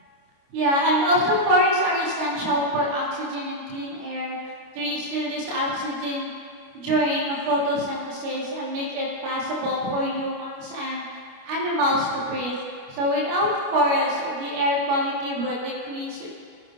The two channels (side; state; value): left; late; 29 ms